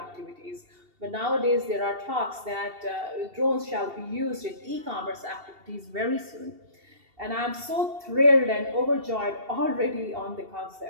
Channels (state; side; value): late; left; 2.7 ms